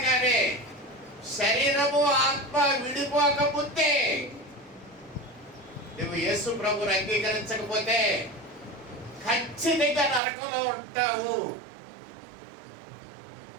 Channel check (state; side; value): drops out; left; at 10.2 s